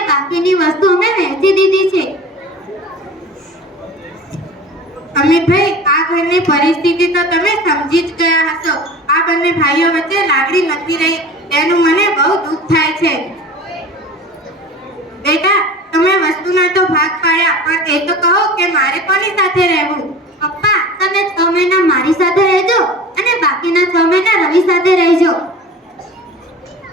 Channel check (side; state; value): both; normal; correlation 0.39